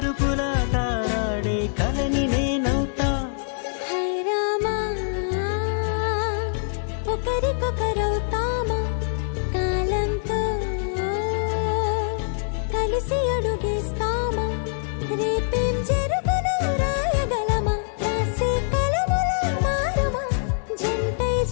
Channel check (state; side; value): silent; right; digital silence